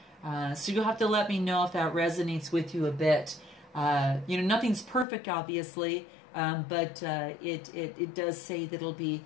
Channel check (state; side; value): drops out; right; at 5.1 s